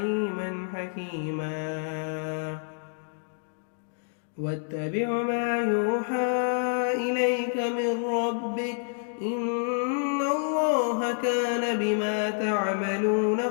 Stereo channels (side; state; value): right; silent; digital silence